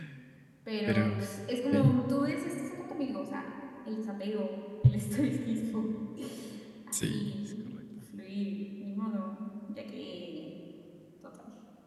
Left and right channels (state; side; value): identical; both; correlation 1.00